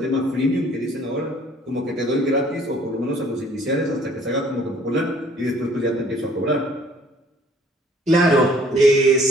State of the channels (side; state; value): both; normal; correlation 0.57